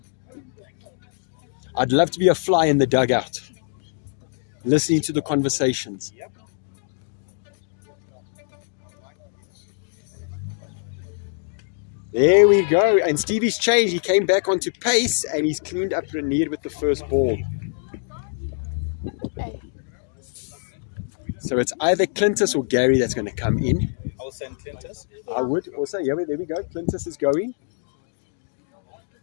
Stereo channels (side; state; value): right; silent; 63 dB below the other